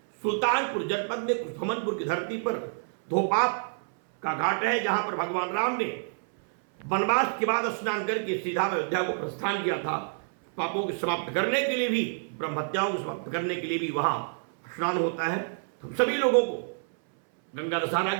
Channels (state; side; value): silent; left; 59 dB below the other